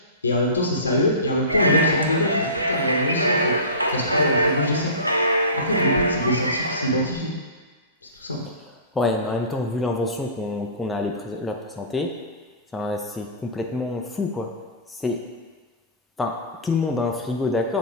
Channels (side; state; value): both; inverted; correlation -0.31